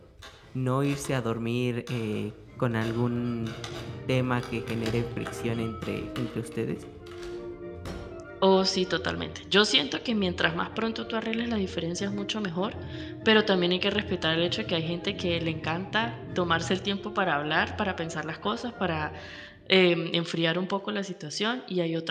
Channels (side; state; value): both; identical; correlation 1.00